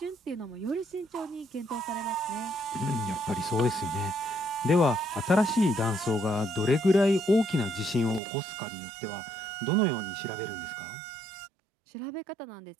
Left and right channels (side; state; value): left; drops out; at 8.2 s